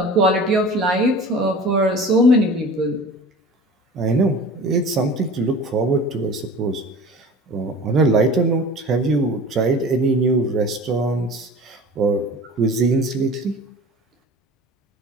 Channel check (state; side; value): normal; both; correlation 0.39